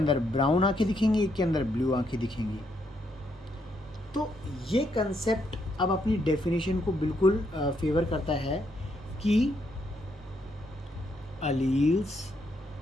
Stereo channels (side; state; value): both; normal; correlation 0.76